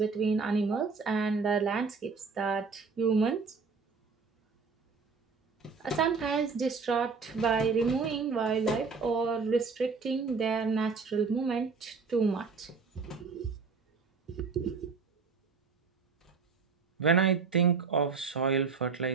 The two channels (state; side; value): quieter; left; 5.0 dB